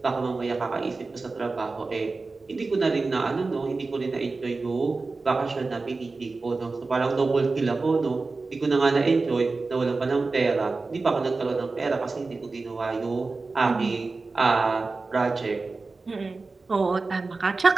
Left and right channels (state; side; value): quieter; left; 3.8 dB